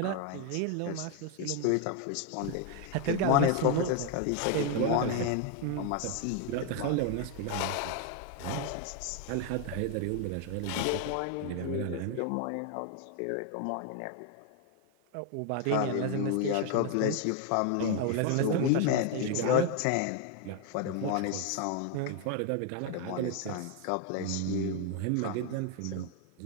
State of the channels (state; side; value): different; both; correlation 0.01